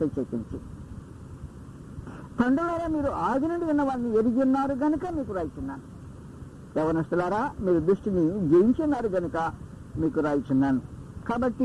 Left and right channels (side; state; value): both; identical; correlation 1.00